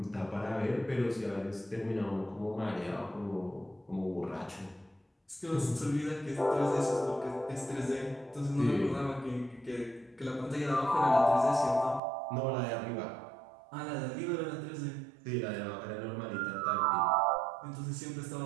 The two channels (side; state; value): left; drops out; at 12.0 s